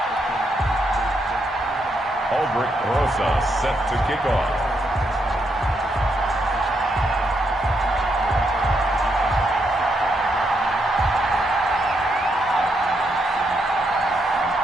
Albert Rosa set to kick off.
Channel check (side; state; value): both; normal; correlation 0.79